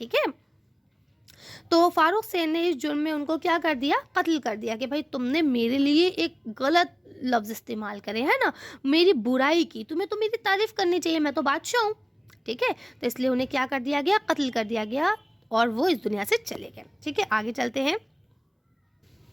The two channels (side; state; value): both; identical; correlation 1.00